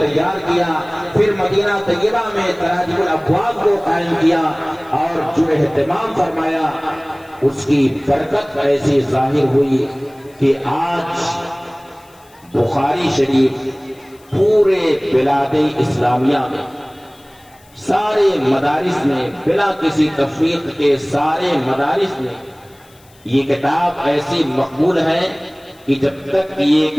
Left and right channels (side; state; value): left; noise; hiss, 29 dB below the sound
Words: کیا. پھر مدینہ طیبہ میں تراجم الابواب کو قائم کیا اور جو اہتمام فرمایا اس کی برکت ایسی ظاہر ہوئی کہ آج بخاری شریف پورے بلاد اسلامیہ میں سارے مدارس میں بلا کسی تفریق کے سارے مدارس میں یہ کتاب ایسی مقبول ہے کہ جب تک یہ